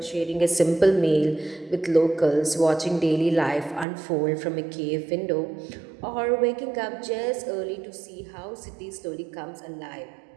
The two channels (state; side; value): drops out; left; at 3.9 s